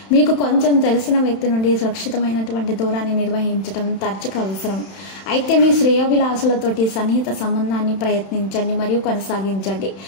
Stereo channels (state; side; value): late; right; 31 ms